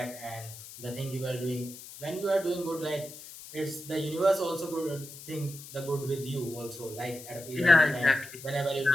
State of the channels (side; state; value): left; noise; hiss, 15 dB below the sound